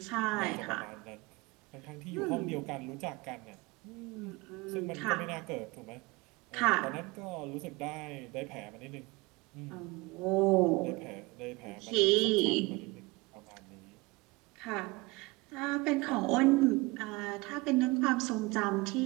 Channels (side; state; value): left; quieter; 23.8 dB